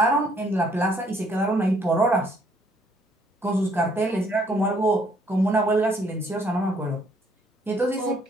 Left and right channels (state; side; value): normal; both; correlation 0.66